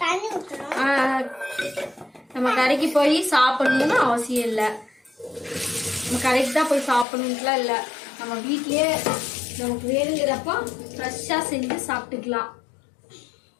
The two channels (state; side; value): drops out; right; at 7.1 s